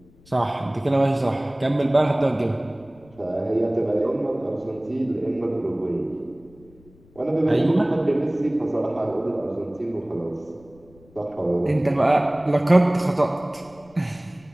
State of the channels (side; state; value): left; noise; rumble, 27 dB below the sound